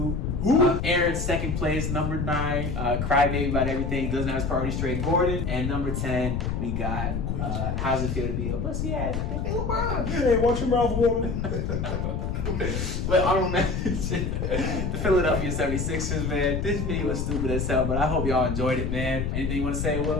Aaron, second place, number 9, crybaby about everything, doesn't have his priority straight, Gordon. And number 10, we got, how's it feel to be a pussy ass? Hey, LeBron. Hey, watch your mouth, woman. Well, honorable mention, the Philadelphia 76ers, man. This video was stupid as hell, but I hope y'all enjoyed it, man. Anything you want to say,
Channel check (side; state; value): left; noise; rumble, 1 dB below the sound